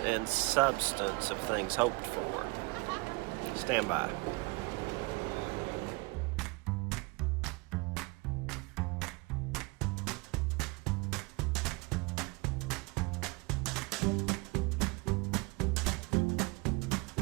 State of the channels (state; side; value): quieter; left; 26.3 dB